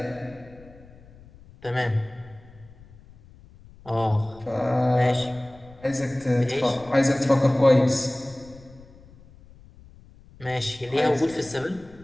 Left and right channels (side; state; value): left; noise; rumble, 23 dB below the sound